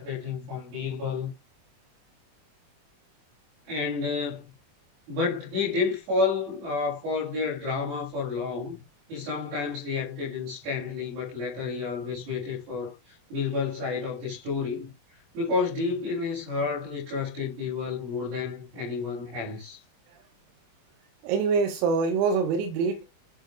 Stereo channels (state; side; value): late; left; 24 ms